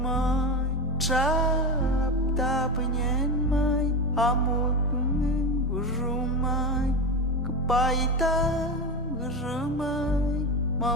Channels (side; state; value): both; normal; correlation 0.20